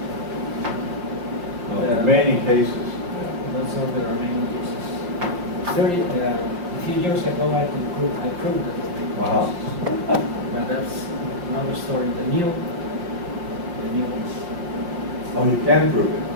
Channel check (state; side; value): late; left; 5.7 ms